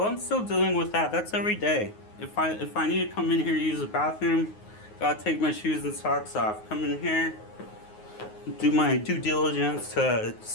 I'm still dealing with that. That's every day. If I need to come in here to use the bathroom, gotta take my shoes and socks off. Come in here, do my due diligence to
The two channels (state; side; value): late; right; 9.5 ms